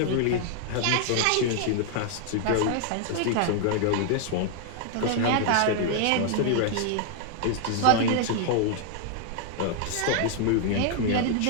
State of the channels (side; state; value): both; different; correlation 0.00